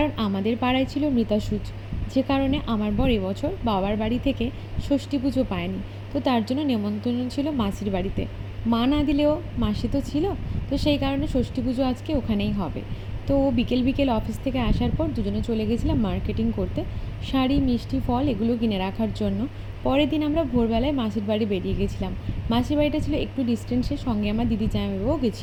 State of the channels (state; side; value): identical; both; correlation 1.00